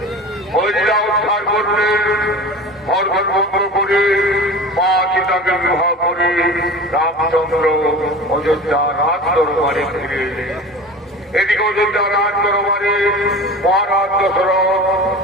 অযোধ্যা উদ্ধার করলেন। ভরত ভঙ্গ করে মা সীতাকে বিবাহ করে রামচন্দ্র অযোধ্যা রাজ দরবারে ফিরে এলেন। এদিকে অযোধ্যা রাজ দরবারে মহারাজ দশরথ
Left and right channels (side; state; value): both; normal; correlation 0.35